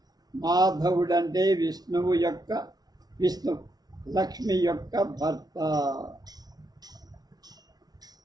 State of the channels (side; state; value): left; late; 0.19 ms